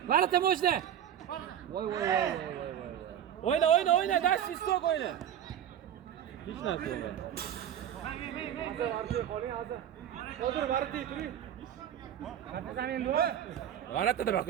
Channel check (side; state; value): left; quieter; 10.2 dB